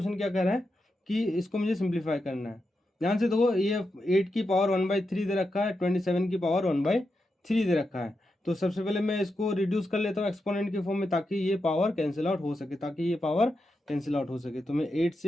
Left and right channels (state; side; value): normal; both; correlation 0.87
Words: क्या कह रहा है कि इसको मुझे सिंप्लीफाई करना है। ध्यान से देखो, ये 8 की पावर 1/3 दे रखा है, 27 की पावर 1/3 दे रखा है। तो सबसे पहले मैं इसको रिड्यूस कर लेता हूँ एक्सपोनेंट के फॉर्म में, ताकि ये पावर कैंसिल आउट हो सके, तो मैं 8